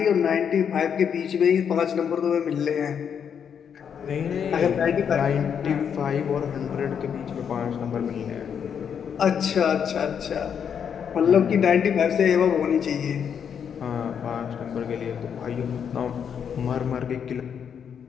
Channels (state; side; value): quieter; right; 7.7 dB